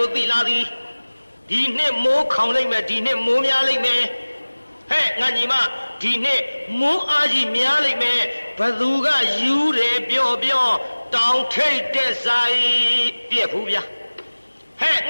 ိုသိလာသည်ဒီနှစ်မိုးခေါင်လိုက်မယ်ဒီနှစ်မိုးများလိုက်မယ်ဟဲ့ငါညီမဒီနှစ်မိုးအားကြီးများလိုက်မယ်ဘသူကယူတယ်ပြောတောင်ထိတ်တဲ့ဆိုင်ပြက်ဘူးဗျာဟဲ့င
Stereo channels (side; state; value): both; inverted; correlation -1.00